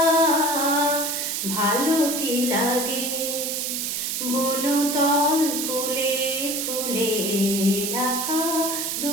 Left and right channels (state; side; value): noise; right; hiss, 2 dB below the sound